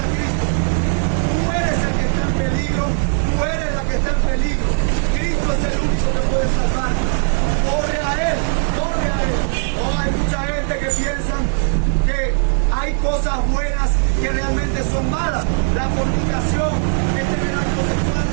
Cristo. Tú eres el que está en peligro, tú eres la que está en peligro. Cristo es el único que puede salvar. Corre a Él, corre a Él. No, hay mucha gente que piensan que hay cosas buenas que realmente son malas. La fornicación es tener actos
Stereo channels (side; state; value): left; silent; digital silence